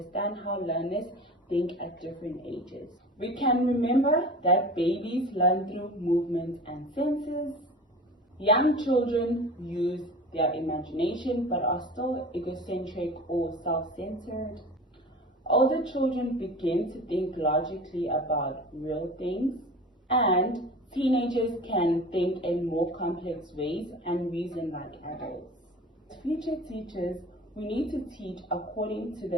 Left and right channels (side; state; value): both; normal; correlation 0.37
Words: how learners think at different ages. We can remember that babies learn through movement and senses. Young children use their imagination but are still egocentric or self-centered. Older children begin to think logically about real things, and teenagers can think in more complex ways and reason like adults. As future teachers, we need to teach according to